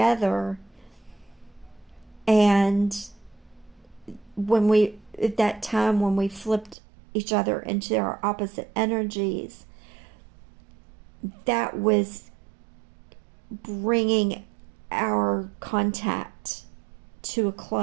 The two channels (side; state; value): left; drops out; at 6.8 s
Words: and that time when we flipped each other into our opposite energies, that was bringing our contact to a